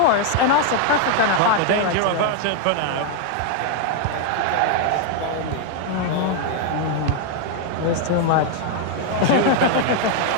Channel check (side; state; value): both; different; correlation 0.00